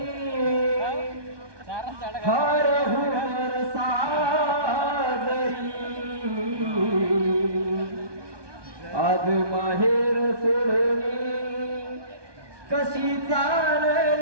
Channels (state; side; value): late; left; 1.2 ms